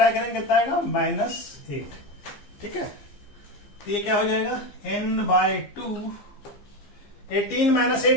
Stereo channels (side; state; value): right; late; 15 ms